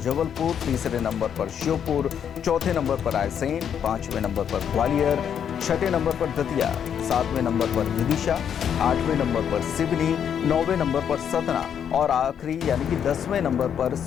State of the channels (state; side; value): quieter; right; 8.4 dB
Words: तीसरे नंबर पर श्योपुर, चौथे नंबर पर रायसेन, 5वें नंबर पर ग्वालियर, 6ठे नंबर पर दतिया, 7वें नंबर पर विदिशा, 8वें नंबर पर सिवनी, 9वें नंबर पर सतना और आखिरी यानी कि 10वें नंबर पर